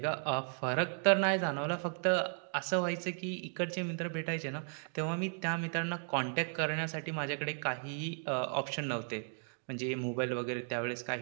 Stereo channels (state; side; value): silent; left; 54 dB below the other